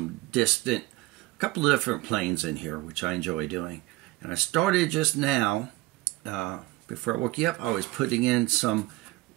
distant, a couple of different planes in here, which I enjoy doing. And I started just now, before I woke you up, I was putting in some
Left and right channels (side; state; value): left; quieter; 19.7 dB